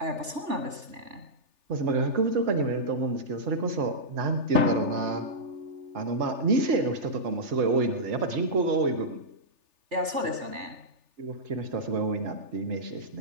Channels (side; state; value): left; late; 3.4 ms